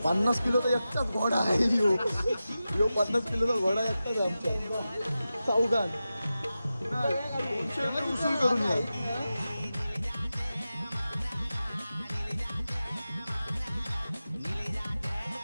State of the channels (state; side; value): inverted; both; correlation -0.93